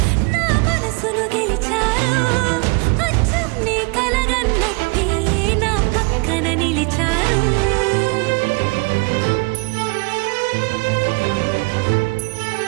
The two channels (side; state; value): left; quieter; 29.4 dB